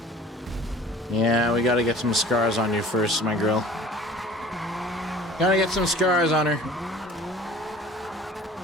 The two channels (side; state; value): both; normal; correlation 0.47